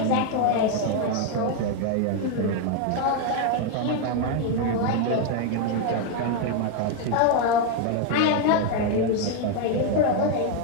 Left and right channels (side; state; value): both; different; correlation 0.01